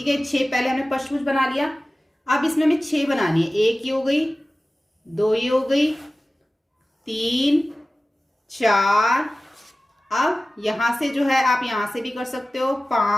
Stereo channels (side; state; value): both; normal; correlation 0.96